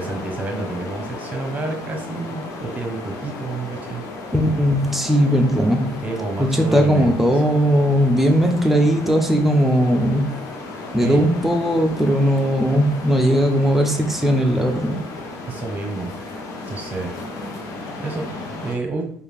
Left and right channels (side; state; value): both; normal; correlation 0.77